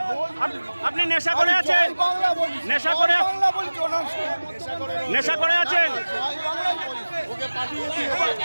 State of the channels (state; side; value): inverted; both; correlation -1.00